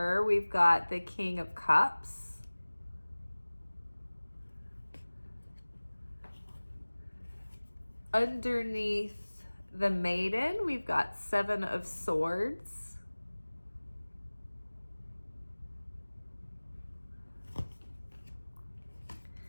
we've got the King of Cups. Underneath the maiden, we've got Seven of Swords.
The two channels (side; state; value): both; inverted; correlation -1.00